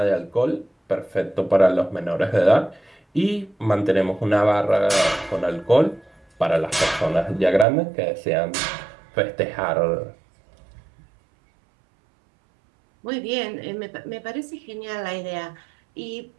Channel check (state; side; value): drops out; left; at 7.7 s